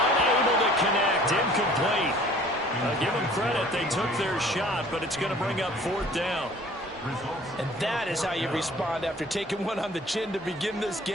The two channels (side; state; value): both; normal; correlation 0.51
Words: unable to connect. Incomplete. Give them credit. They took their shot, but it's going to bring up 4th down. And that is how you respond after taking one on the chin to begin this